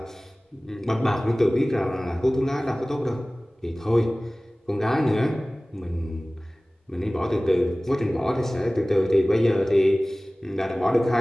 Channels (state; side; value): normal; both; correlation 0.98